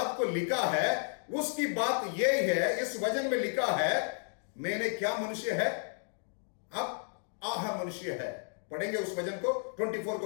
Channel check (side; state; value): right; silent; 56 dB below the other